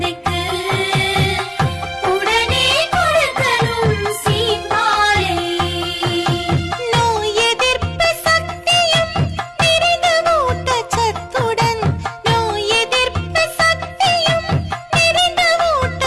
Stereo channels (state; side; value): identical; both; correlation 1.00